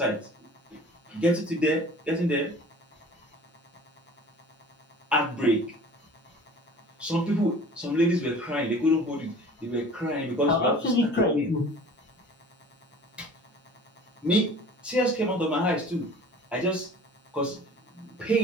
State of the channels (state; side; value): normal; both; correlation 0.45